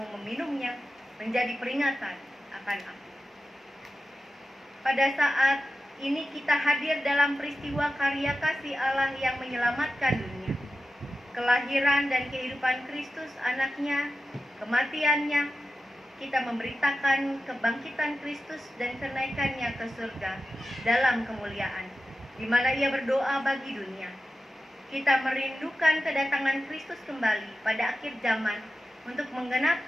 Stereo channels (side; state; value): both; normal; correlation 0.93